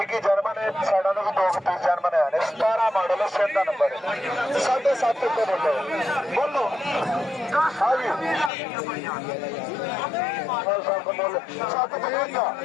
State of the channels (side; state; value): right; drops out; at 8.5 s